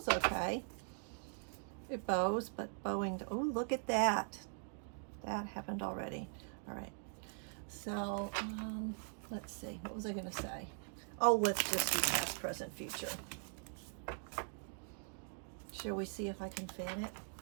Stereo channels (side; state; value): left; silent; 50 dB below the other